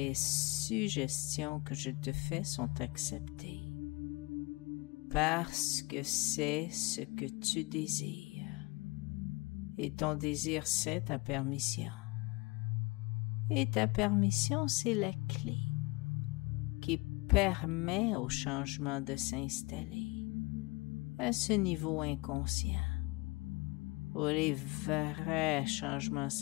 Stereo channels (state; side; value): quieter; right; 25.2 dB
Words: suggestions que je te fais sont acceptées, parce que c'est ce que tu désires. Et ton désir, c'est ta permission. Et ta permission, c'est la clé qui permet au changement de s'installer à ce niveau inconscient, où les vrais changements